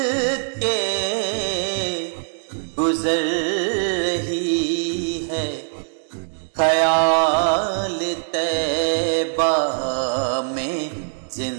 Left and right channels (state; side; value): silent; left; digital silence